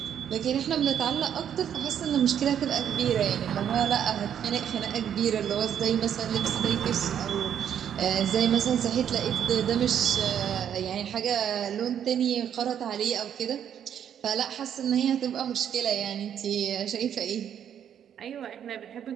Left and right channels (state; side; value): quieter; left; 9.2 dB